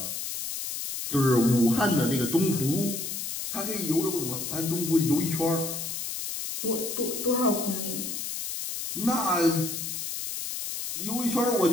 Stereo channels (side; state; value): left; noise; hiss, 5 dB below the sound